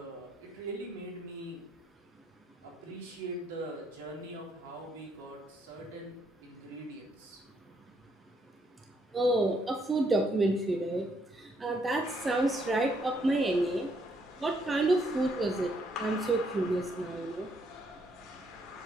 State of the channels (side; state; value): both; normal; correlation 0.72